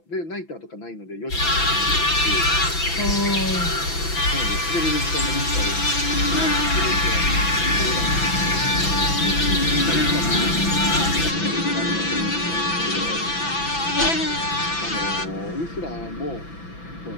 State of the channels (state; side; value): late; right; 6.0 ms